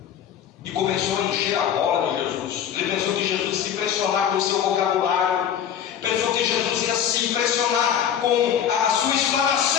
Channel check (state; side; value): quieter; right; 9.2 dB